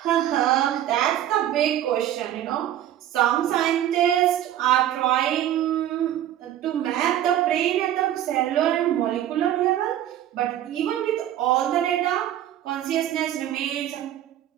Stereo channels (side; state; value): left; quieter; 11.9 dB